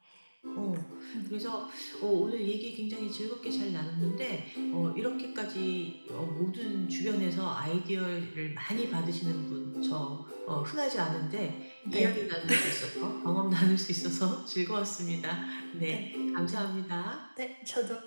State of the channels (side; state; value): both; inverted; correlation -1.00